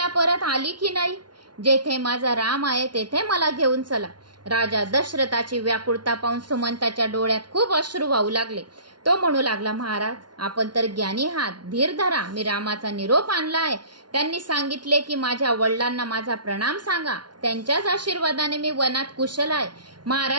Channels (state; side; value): late; left; 0.70 ms